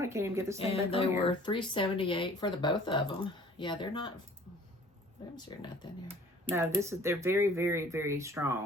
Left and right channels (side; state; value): both; normal; correlation 0.51